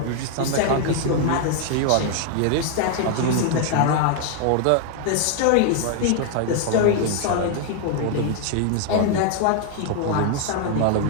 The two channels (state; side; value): different; both; correlation 0.00